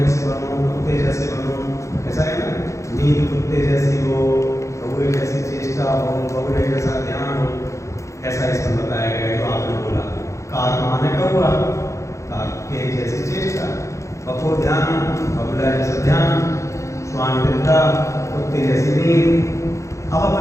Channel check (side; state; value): right; late; 0.15 ms